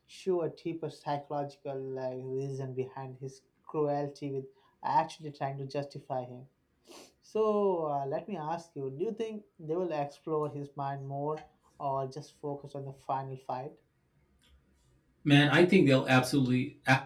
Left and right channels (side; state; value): both; identical; correlation 1.00